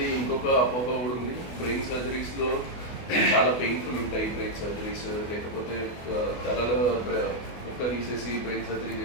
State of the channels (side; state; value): right; late; 24 ms